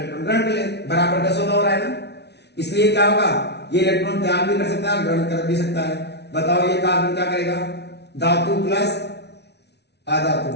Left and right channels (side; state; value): right; late; 0.49 ms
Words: ग्रहण कर ले, बराबर का सौदा हो रहा है ना, इसलिए क्या होगा, ये इलेक्ट्रॉन त्याग भी कर सकता है, ग्रहण कर भी सकता है। बताओ ये कार्बन क्या करेगा, धातु प्लस अधातु,